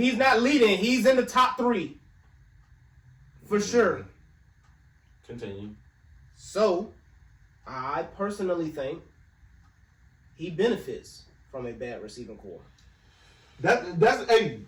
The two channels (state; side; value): identical; both; correlation 1.00